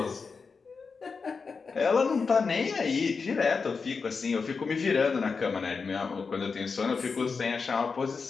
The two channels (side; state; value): right; quieter; 5.0 dB